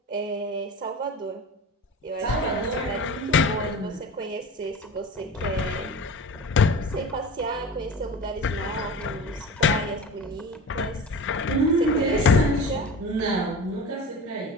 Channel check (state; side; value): normal; both; correlation 0.34